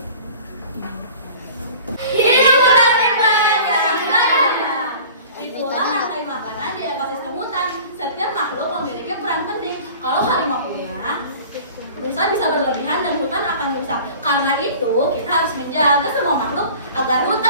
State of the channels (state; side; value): inverted; both; correlation -0.43